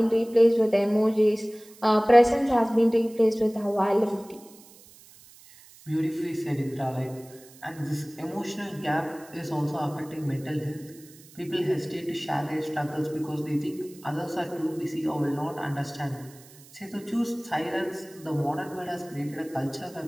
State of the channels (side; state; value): right; noise; hiss, 23 dB below the sound